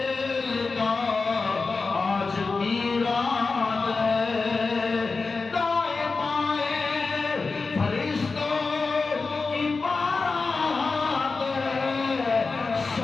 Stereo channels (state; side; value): quieter; right; 4.2 dB